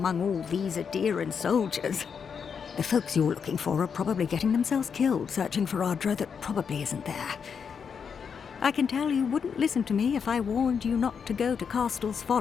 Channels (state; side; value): quieter; right; 6.5 dB